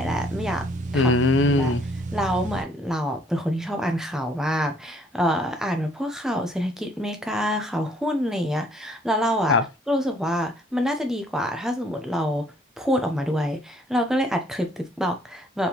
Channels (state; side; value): normal; both; correlation 0.63